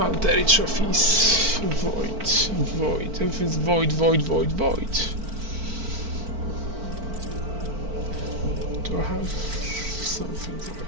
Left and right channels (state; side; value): late; left; 4.5 ms